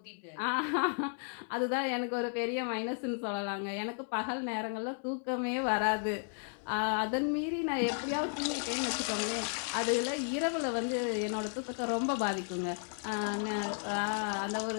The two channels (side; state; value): right; silent; 55 dB below the other